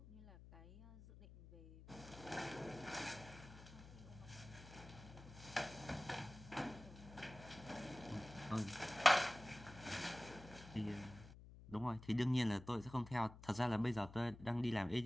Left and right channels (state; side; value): noise; left; hum, 16 dB below the sound